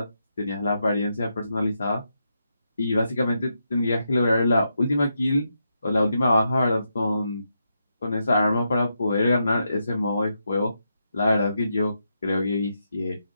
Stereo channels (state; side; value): inverted; both; correlation -0.83